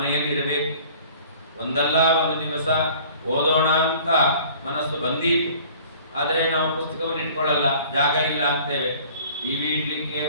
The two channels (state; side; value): inverted; both; correlation -0.50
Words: ಇರಬೇಕು. ಒಂದಲ್ಲ ಒಂದು ದಿವಸ ಓದೋಣ ಅಂತ ಮನಸ್ಸು ಬಂದೀತು, ಆದರೆ ನಾವು ಪುಸ್ತಕವನ್ನು ಇಟ್ಕೊಳ್ಳಲ್ಲ, ಜಾಗ ಇಲ್ಲ ಅಂತೇವೆ. ಟಿವಿ ಇಡ್ಲಿಕ್ಕೆ,